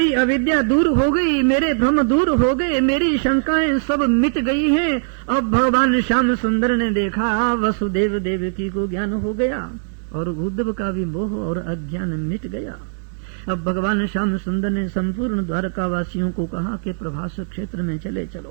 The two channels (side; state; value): left; silent; 66 dB below the other